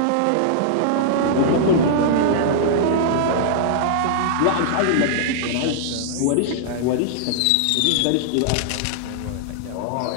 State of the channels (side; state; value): both; different; correlation -0.01